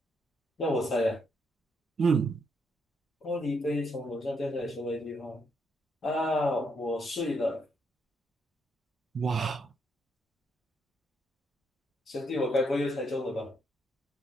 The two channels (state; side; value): normal; both; correlation 0.76